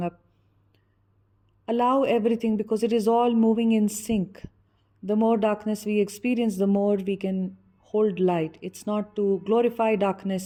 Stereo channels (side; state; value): both; identical; correlation 1.00